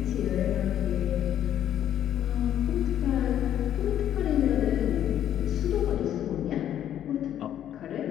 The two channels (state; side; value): quieter; right; 10.8 dB